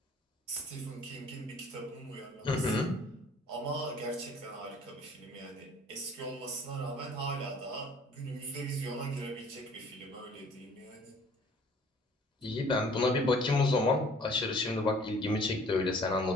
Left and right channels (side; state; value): both; normal; correlation 0.54